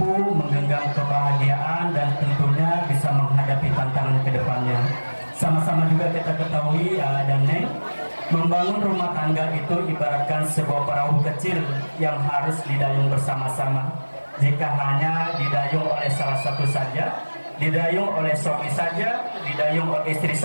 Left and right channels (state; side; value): inverted; both; correlation -1.00